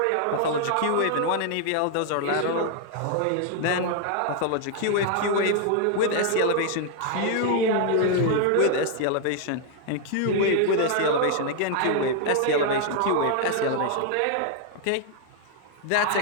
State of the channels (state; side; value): different; both; correlation 0.00